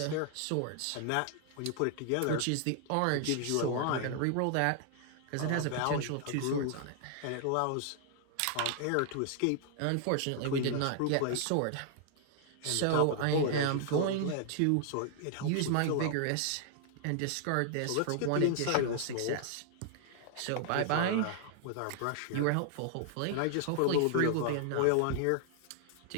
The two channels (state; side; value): different; both; correlation -0.01